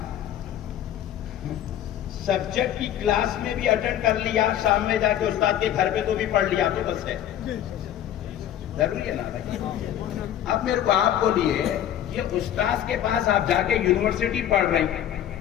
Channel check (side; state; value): right; quieter; 11.1 dB